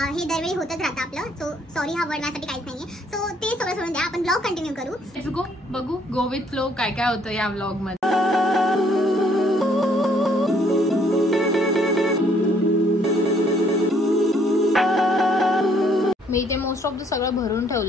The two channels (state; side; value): normal; both; correlation 0.65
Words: दरवेळी होतच राहतं आपलं. सो सॉरी हा वर्ड माझ्यासाठी काहीच नाहीये. सो ते सगळं सोडून द्या, आपण व्लॉग कंटिन्यू करू. Let's go. बघू गो विथ फ्लो काय काय होतं या व्लॉग मध्ये. मी इथे मोस्ट ऑफ द सगळं भरून